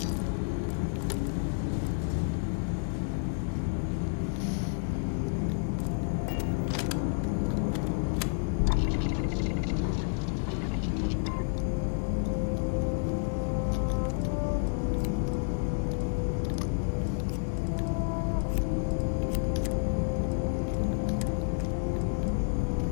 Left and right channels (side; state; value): right; silent; 58 dB below the other